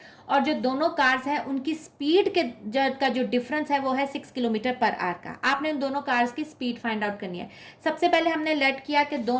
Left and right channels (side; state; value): both; identical; correlation 1.00